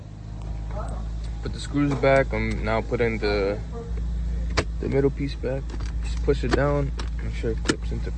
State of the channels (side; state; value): both; identical; correlation 1.00